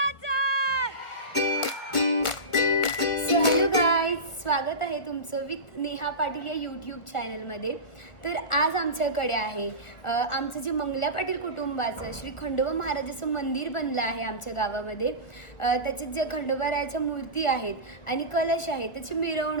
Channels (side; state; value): right; late; 1.4 ms